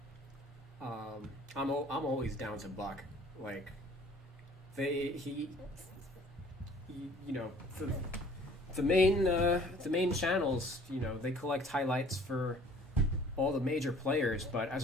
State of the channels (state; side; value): normal; both; correlation 0.53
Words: I'm always down to buck. Like, you know, the main channels, you know, they collect highlights for all the major players, but as